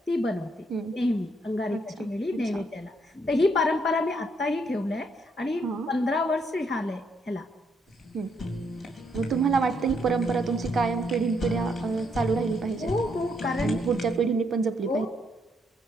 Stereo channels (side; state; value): both; normal; correlation 0.74